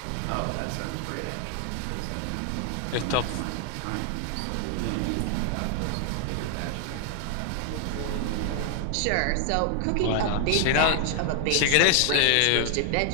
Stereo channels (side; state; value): both; different; correlation 0.00